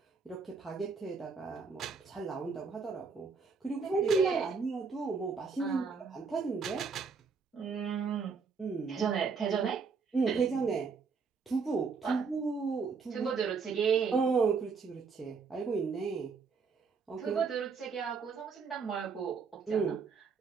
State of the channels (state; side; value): quieter; left; 5.2 dB